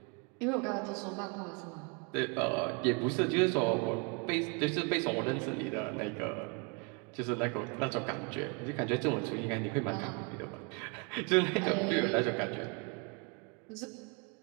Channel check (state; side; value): quieter; left; 32.7 dB